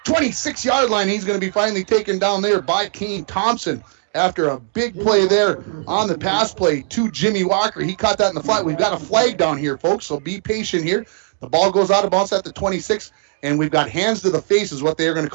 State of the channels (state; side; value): silent; left; digital silence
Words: 26-yard line. He's going to be finally taken down there by Kane Thompson after a big play there on the pass play to Jimmy Walker. He caught that in the flat. We've got a flag down here, folks, so be patient here. The ball goes out of bounds at the 26, and we've got hands to the face is what they are going to